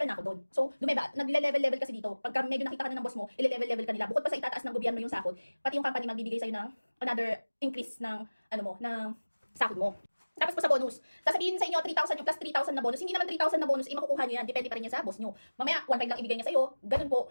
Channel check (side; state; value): both; inverted; correlation -1.00